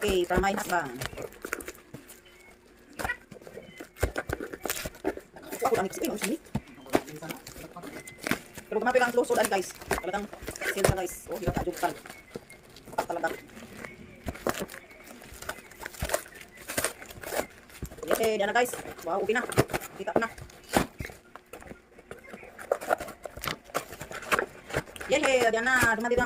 from my husband. So ako lang i-explain. Ang sini. Pero gumapit lang ang close hold guys. Talagang sale siya guys. Oh, hirap ka-joke ka. Talaga. Okay, diyan na guys. Wow, okay na. Kita ko na. Yay, diyan na. Dumating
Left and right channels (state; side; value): identical; both; correlation 1.00